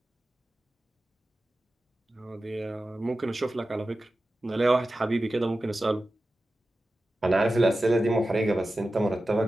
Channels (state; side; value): normal; both; correlation 0.94